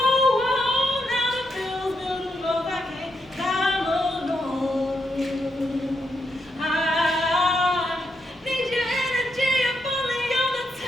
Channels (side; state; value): both; normal; correlation 0.81